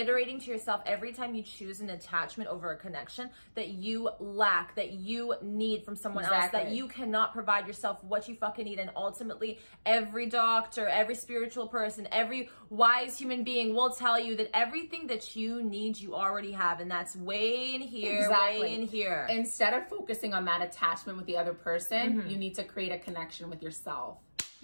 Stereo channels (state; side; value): inverted; both; correlation -1.00